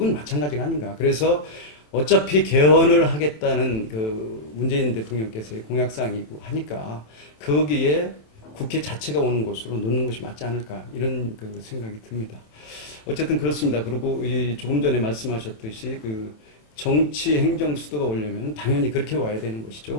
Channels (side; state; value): right; late; 27 ms